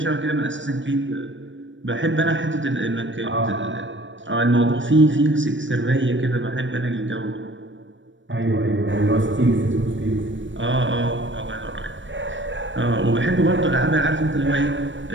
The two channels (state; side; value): late; left; 0.55 ms